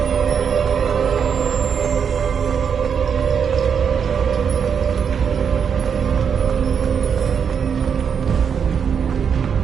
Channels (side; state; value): left; quieter; 7.0 dB